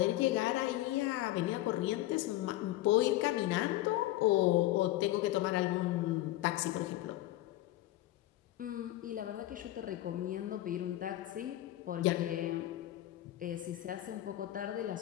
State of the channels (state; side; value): quieter; right; 15.5 dB